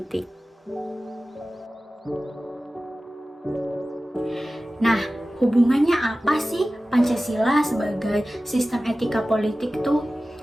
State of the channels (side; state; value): both; normal; correlation 0.96